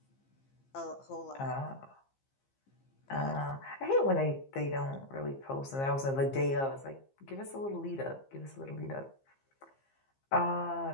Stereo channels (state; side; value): late; right; 15 ms